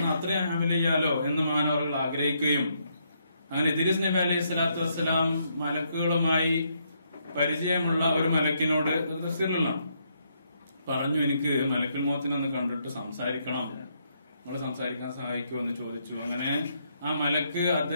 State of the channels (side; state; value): both; inverted; correlation -0.75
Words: അത്രയും അമല് ചെയ്യാലോ എന്ന് മാനവറുകൾ ആഗ്രഹിക്കുകയും അങ്ങനെ ഇദ്രീസ് നബി അലൈഹി സ്വലാത്തു വസ്സലാം മലക്കുകളുമായി പരിചയമുള്ള ഒരു മലക്കിനോട് തഫ്സീറിലുള്ള പറഞ്ഞു, എനിക്ക് മലക്കുൽ മൗത്തിനൊന്ന് കണ്ടിട്ട് സംസാരിക്കണം, നമ്മള് സംസാരിക്കാൻ സഹായിക്കുമോ എന്ന് ചോദിച്ചു. അങ്ങനെ ആ മലക്ക്